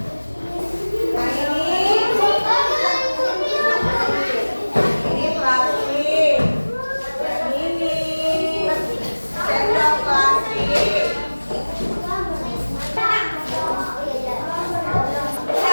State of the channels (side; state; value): both; inverted; correlation -1.00